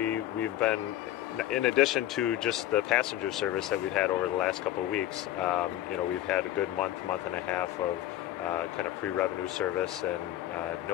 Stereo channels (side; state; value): right; quieter; 13.6 dB